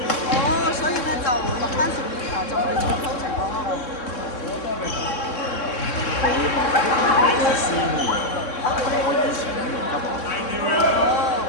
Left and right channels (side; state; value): right; late; 3.6 ms